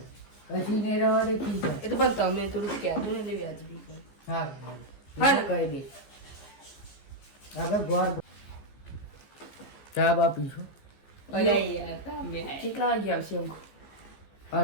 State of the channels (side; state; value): right; late; 15 ms